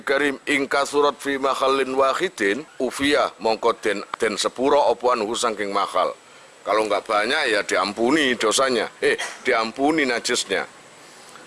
Karim, ingka surat fi makhallin wahidin, ufiyah mongko den sepuro opuan husangking makhal. Kalau nggak banyak ya diampuni dosanya, diampuni najisnya.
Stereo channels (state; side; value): identical; both; correlation 1.00